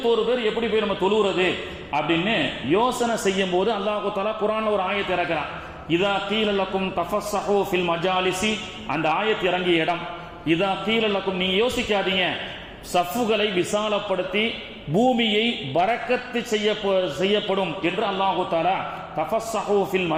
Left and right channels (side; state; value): both; identical; correlation 1.00